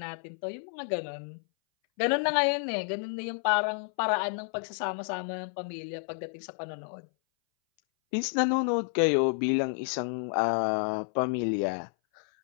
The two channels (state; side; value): silent; right; 58 dB below the other